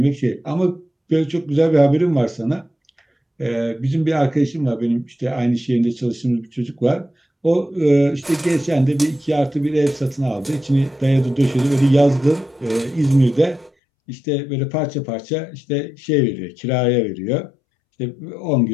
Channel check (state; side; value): drops out; right; at 13.7 s